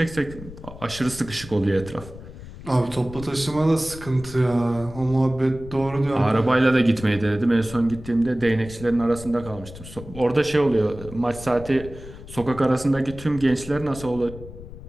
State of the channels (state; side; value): noise; left; rumble, 15 dB below the sound